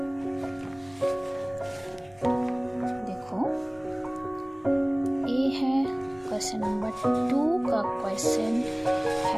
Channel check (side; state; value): left; noise; rumble, 27 dB below the sound